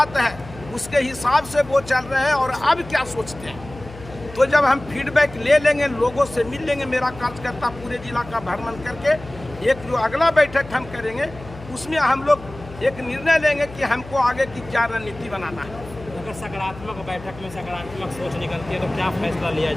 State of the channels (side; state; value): left; noise; hum, 17 dB below the sound